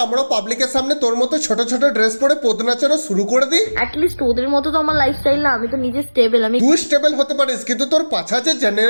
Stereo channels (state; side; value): inverted; both; correlation -1.00